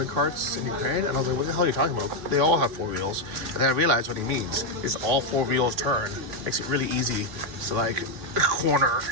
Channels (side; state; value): left; late; 3.6 ms